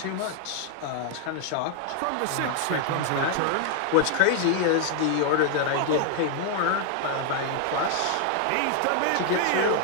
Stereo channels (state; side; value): different; both; correlation 0.00